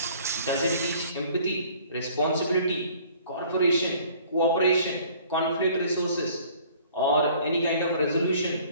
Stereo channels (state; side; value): inverted; both; correlation -0.54